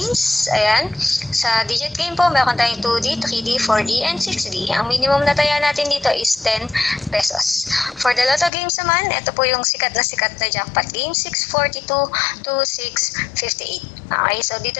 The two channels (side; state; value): right; drops out; at 8.5 s